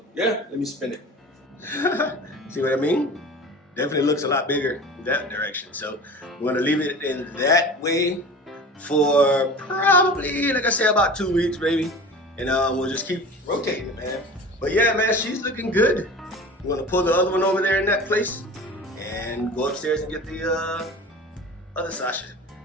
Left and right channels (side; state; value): both; normal; correlation 0.37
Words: yeah, let me spin it. See what I mean? Definitely looks a lot bigger in that direction. So I'm going to leave it in that way for probably, like I said, about 2 weeks, maybe. And we'll just keep rotating it, man. But yeah, man, she's looking good. I'm going to pull the other one over there in that place and go upstairs and get the other Sasha.